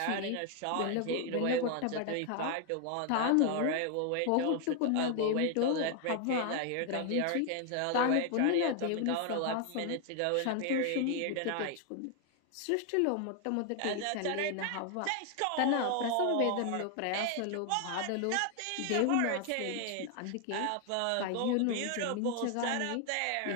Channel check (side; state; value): both; different; correlation 0.00